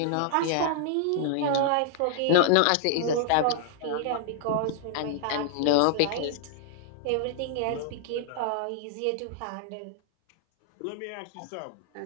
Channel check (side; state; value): both; different; correlation -0.01